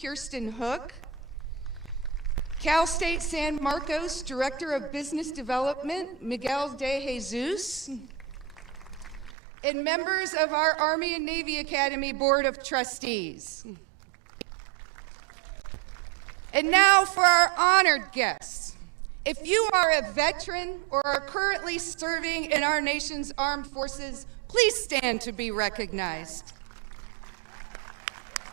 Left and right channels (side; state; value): left; drops out; at 9.3 s